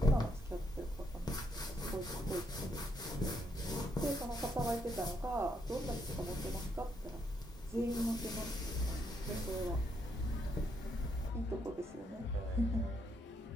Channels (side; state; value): both; normal; correlation 0.75